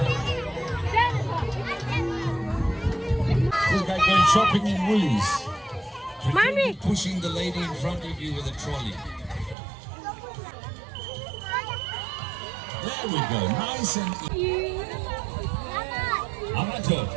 Going shopping in Woolies. Mommy. Pushing the lady in front of you with a trolley. There we go. Nice and easy. Amato.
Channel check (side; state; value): left; drops out; at 9.6 s